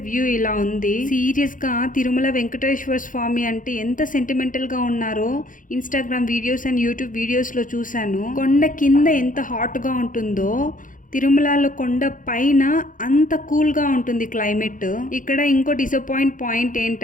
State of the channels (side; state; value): right; late; 0.39 ms